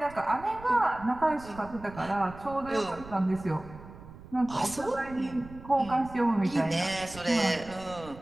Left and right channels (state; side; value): noise; right; rumble, 17 dB below the sound